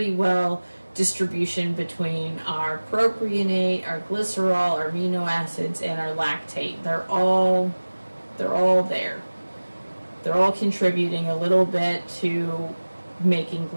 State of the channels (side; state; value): both; inverted; correlation -1.00